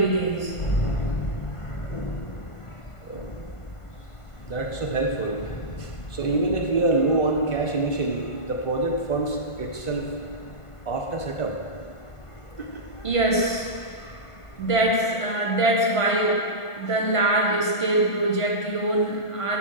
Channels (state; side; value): late; right; 1.5 ms